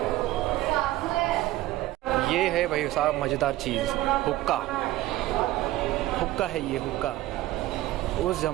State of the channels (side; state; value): left; quieter; 16.3 dB